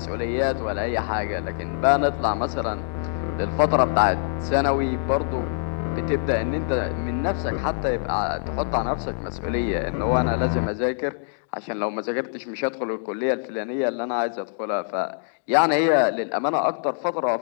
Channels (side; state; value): right; silent; 62 dB below the other